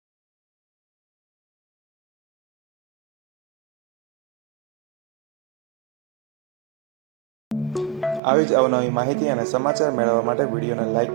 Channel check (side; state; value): left; drops out; at 8.2 s